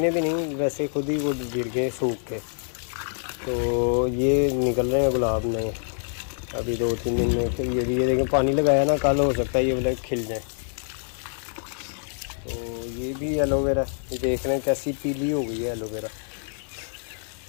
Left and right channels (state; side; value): silent; right; digital silence